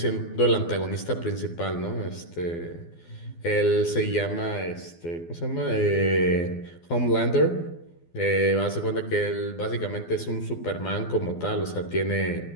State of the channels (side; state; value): right; late; 12 ms